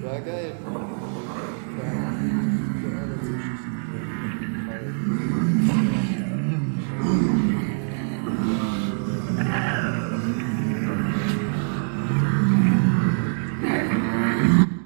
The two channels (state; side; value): silent; left; digital silence